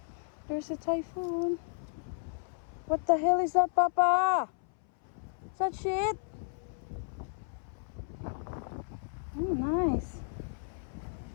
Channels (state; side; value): silent; right; 56 dB below the other